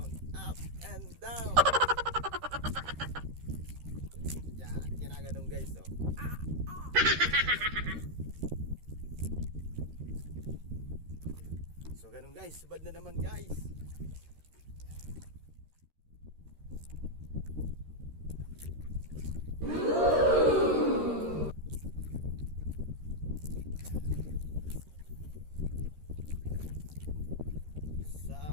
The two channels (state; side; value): late; left; 13 ms